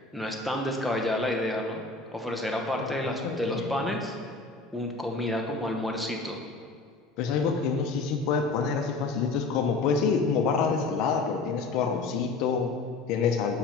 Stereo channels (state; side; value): quieter; right; 3.8 dB